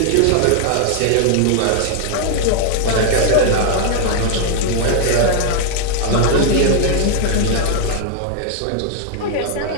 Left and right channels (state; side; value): different; both; correlation 0.00